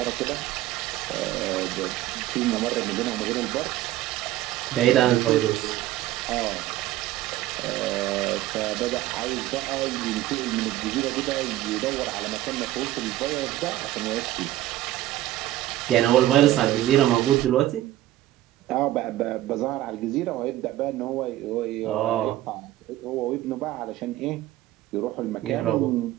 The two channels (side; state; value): left; quieter; 14.8 dB